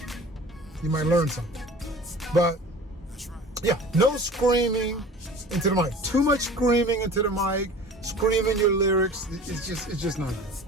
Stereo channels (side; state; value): both; normal; correlation 0.42